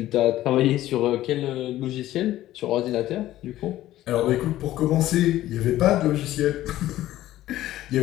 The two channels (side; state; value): right; quieter; 14.4 dB